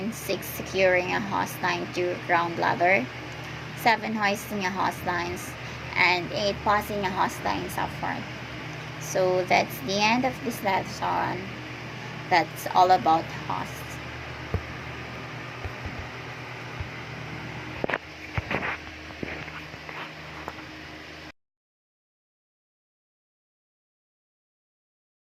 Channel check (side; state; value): both; identical; correlation 1.00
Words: 6. Securing a hose line to ground ladder. 7. Hoisting a hose lines. And 8. Passing a hose lines up front. So that's the end of this lesson. That's all about hose.